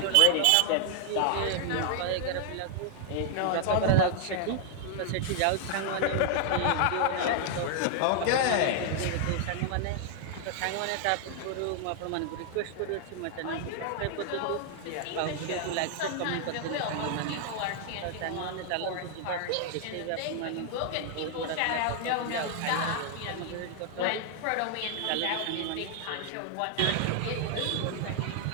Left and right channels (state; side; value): different; both; correlation 0.00